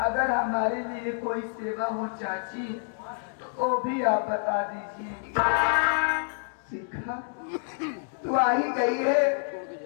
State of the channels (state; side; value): silent; right; digital silence